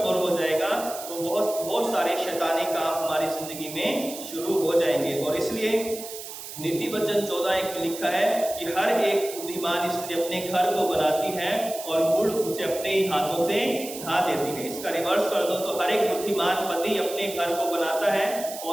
हो जाएगा तो बहुत सारे शैतानी काम हमारी जिंदगी में शुरू हो जाएंगे। और इसलिए नीति वचन 14:1 में लिखा है कि हर एक बुद्धिमान स्त्री अपने घर को बनाती है और मूढ़ उसे अपने ही हाथों से ढा देती है। इसका रिवर्स कर दो तो हर एक बुद्धिमान पति अपने घर को बनाता है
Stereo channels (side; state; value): right; noise; hiss, 11 dB below the sound